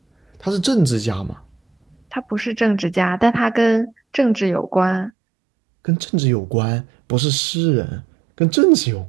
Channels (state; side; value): drops out; left; at 5.1 s